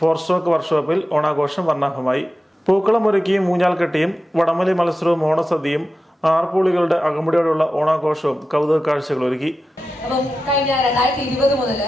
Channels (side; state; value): both; normal; correlation 0.92